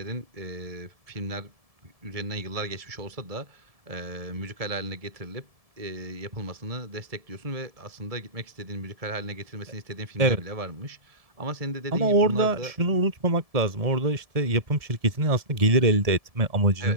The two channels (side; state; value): left; late; 1.7 ms